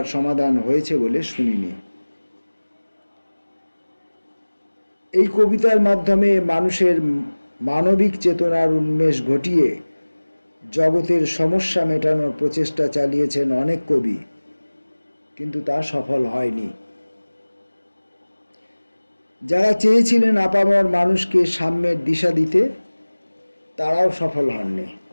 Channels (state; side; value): inverted; both; correlation -1.00